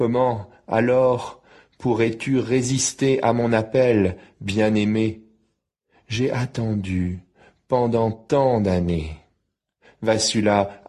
alors, pourrais-tu résister à mon appel, bien-aimé? J'ai attendu pendant tant d'années. Vassula,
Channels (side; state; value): both; identical; correlation 1.00